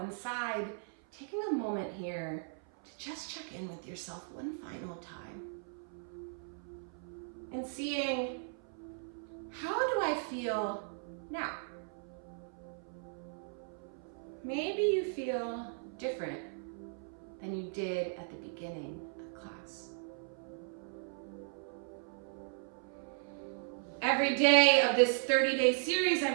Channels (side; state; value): left; silent; 53 dB below the other